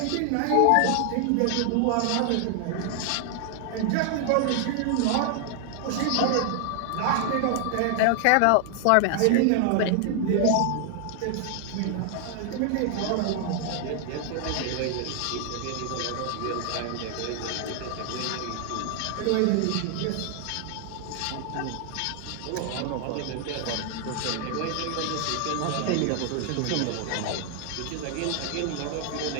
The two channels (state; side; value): different; both; correlation 0.00